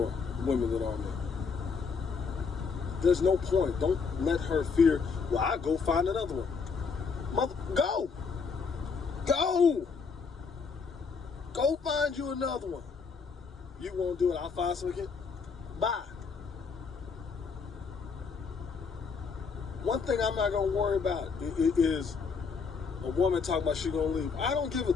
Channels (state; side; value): quieter; right; 5.3 dB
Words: women than are men. There's no point. Don't let her fear. Well, I'll go find another one. Go. Go find you another one. You won't do it. I'll find some again. Bye. One thing I'm not going to worry about is a woman talking about she going to leave. I don't give a